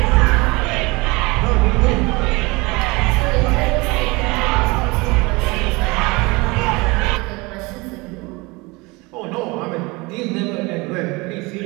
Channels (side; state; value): left; quieter; 24.9 dB